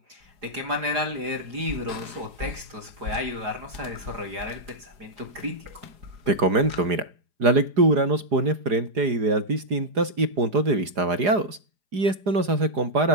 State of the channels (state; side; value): late; left; 4.9 ms